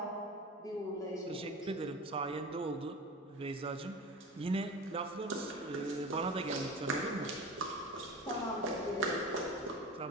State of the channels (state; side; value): normal; both; correlation 0.32